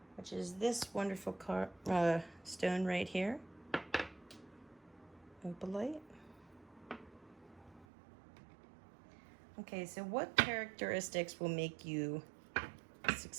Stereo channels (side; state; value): left; drops out; at 7.9 s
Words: which is this wonderful stone right here. Opalite. Okay, so what characteristics will make you